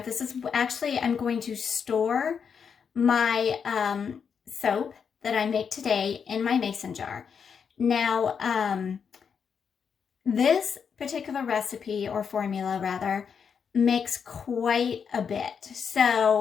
This is actually, I'm going to store my soap that I make today in my mason jar. Now, this particular recipe, or formula rather, makes quite a bit.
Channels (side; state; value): right; quieter; 6.7 dB